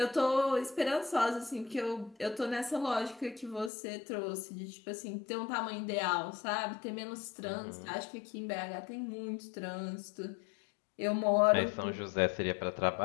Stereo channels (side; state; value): right; drops out; at 3.7 s